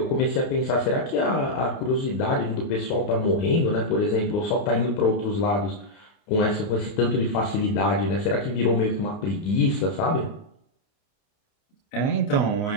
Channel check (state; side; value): late; right; 29 ms